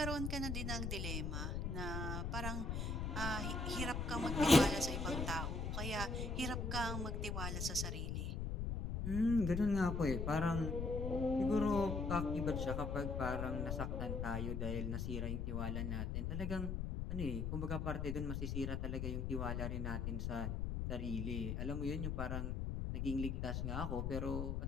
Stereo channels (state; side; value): noise; left; rumble, 1 dB below the sound